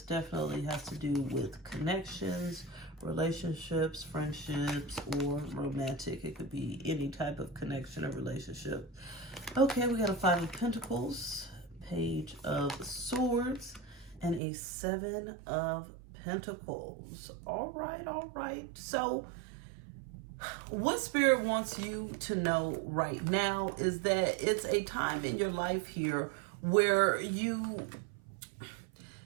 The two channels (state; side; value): drops out; left; at 14.4 s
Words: definitely has to do with connections, relationships, friendships, or romantic. It could be any type of connection or relationship. Okay, we got a 5 of Pentacles, Page of Swords, and a 7 of Pentacles. All right. So what Spirit wants you to know right now is that it's a time in your life here where